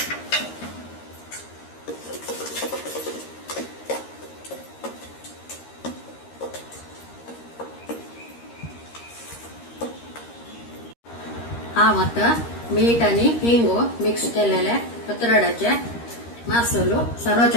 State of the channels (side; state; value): right; late; 13 ms